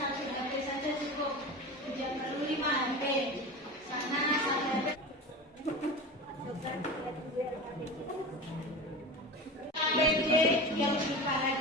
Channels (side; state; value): both; normal; correlation 0.29